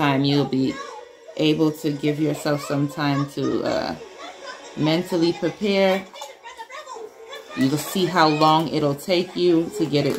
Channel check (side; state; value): both; identical; correlation 1.00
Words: You'll be able to give yourself some time to mentally prepare. You'll see how long it'll take you to get